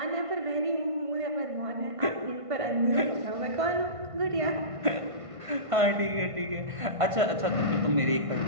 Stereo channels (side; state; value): left; late; 1.5 ms